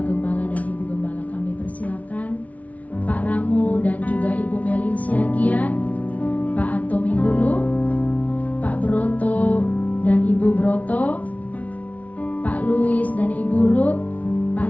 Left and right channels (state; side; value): late; right; 0.069 ms